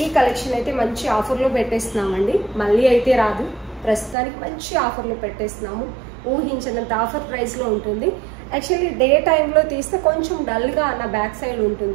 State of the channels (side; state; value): left; drops out; at 4.2 s